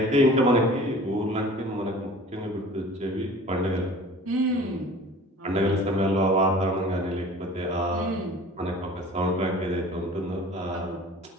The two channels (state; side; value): normal; both; correlation 0.44